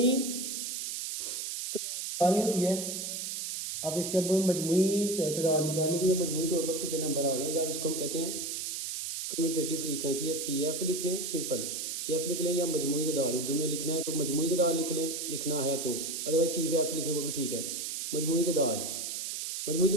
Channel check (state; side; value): noise; right; hiss, 4 dB below the sound